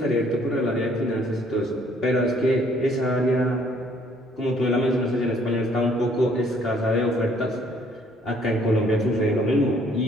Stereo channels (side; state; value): both; normal; correlation 0.62